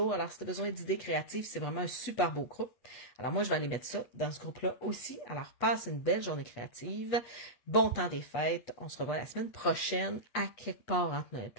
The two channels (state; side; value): late; right; 8.3 ms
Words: Alors, si tu as besoin d'idées créatives, c'est vraiment un super beau groupe. Alors, moi, je vais aller mettre ça dans ce groupe-là aussi. Alors, passe une belle journée créative. Bon temps des fêtes. On se revoit la semaine prochaine à quelque part entre Noël